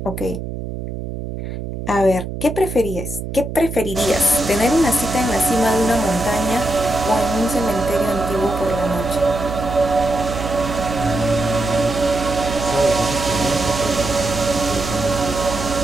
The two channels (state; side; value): noise; right; hum, 7 dB below the sound